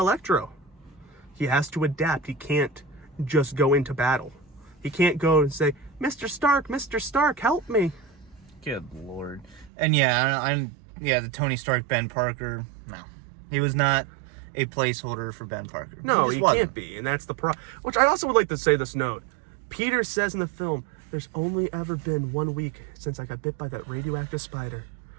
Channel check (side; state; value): left; drops out; at 9.7 s